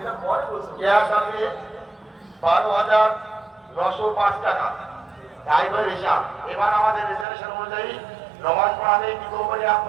ক্যাশ আছে 12,905 টাকা। ড্রাইভার হিসাব। এবার আমাদের রিজার্ভেশন অনুযায়ী নমাজ পড়াবে কি কোম্পানি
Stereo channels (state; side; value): drops out; left; at 7.2 s